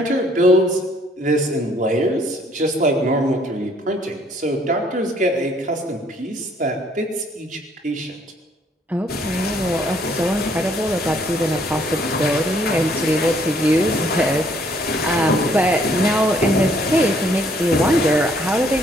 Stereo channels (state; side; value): normal; both; correlation 0.64